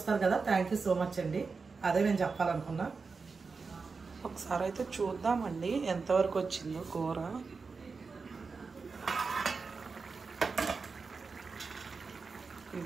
కదా. థ్యాంక్ యూ సో మచ్ అండి. అదే నేను చెప్పాలనుకున్నా. ఒకసారి అయితే చూద్దామండి ఎంతవరకు వచ్చిందో కూర.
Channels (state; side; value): quieter; left; 4.7 dB